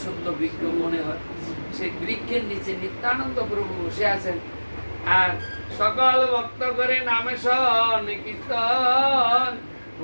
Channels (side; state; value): both; inverted; correlation -1.00